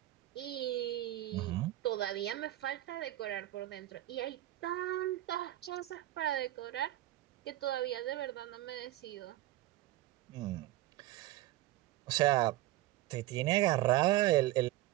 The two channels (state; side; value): quieter; left; 16.0 dB